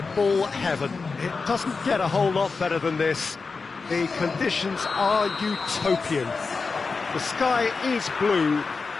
heaven. It doesn't get a whole lot better than this. The conditions are utopian. The sky is blue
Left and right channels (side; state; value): right; quieter; 4.5 dB